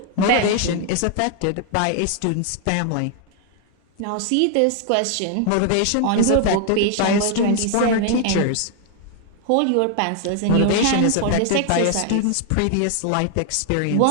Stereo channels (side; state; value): both; different; correlation 0.00